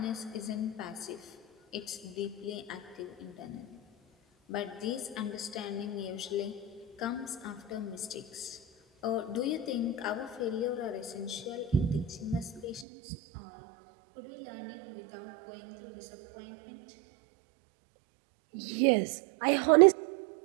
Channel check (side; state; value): left; drops out; at 12.9 s